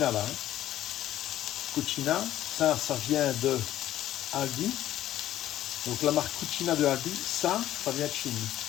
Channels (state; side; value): quieter; right; 13.0 dB